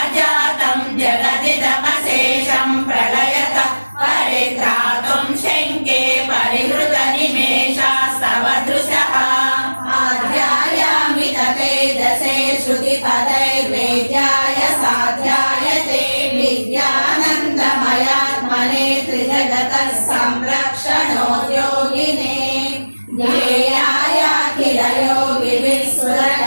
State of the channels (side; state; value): both; inverted; correlation -1.00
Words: जातं जगदिदमशेषं प्रलयत परित्रातुं शङ्के परिहृतनिमेषास्तव दृशः आध्यायामि ततेजसे श्रुतिपदैर्वेद्याय साध्यायते विद्यानन्दमयात्मने त्रिजगतः संरक्षणोद्योगिने ज्ञेयाय